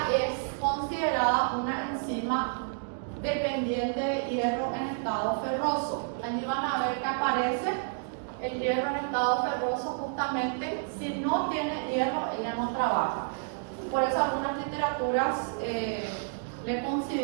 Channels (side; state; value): left; silent; digital silence